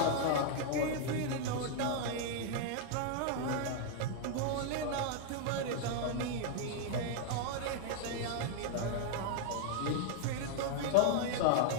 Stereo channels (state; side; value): different; both; correlation 0.00